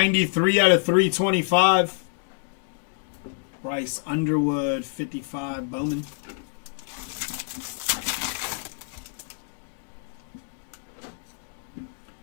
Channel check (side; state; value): right; silent; 61 dB below the other